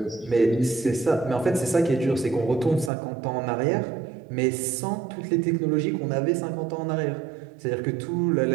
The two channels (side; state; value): left; drops out; at 2.9 s